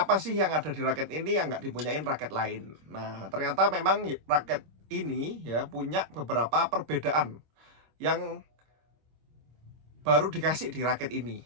sih yang ada di raket ini yang nggak dipunyain raket lain. Nah, ternyata memang raket ini ya punya beberapa perbedaan yang baru dikasih di raket ini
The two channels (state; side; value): late; left; 26 ms